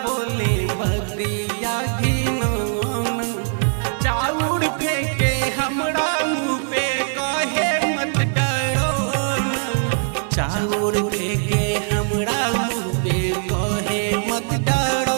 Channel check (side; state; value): left; silent; digital silence